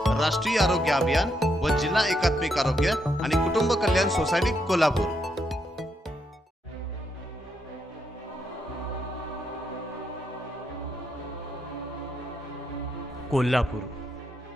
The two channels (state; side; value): normal; both; correlation 0.78